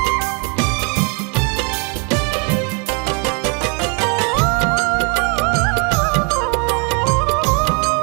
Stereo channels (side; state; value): left; quieter; 36.3 dB